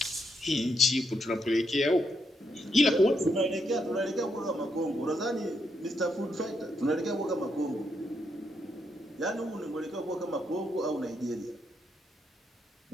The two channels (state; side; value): normal; both; correlation 0.79